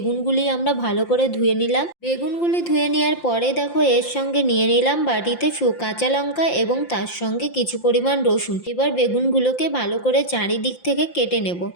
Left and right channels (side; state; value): right; late; 5.8 ms